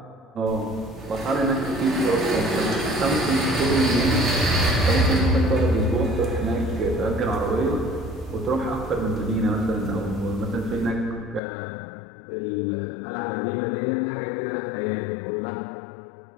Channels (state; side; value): drops out; right; at 11.4 s